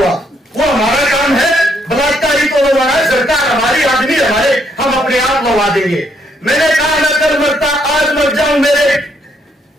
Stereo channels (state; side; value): normal; both; correlation 0.72